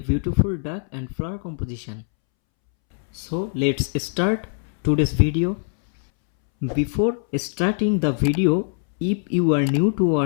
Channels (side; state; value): right; silent; 64 dB below the other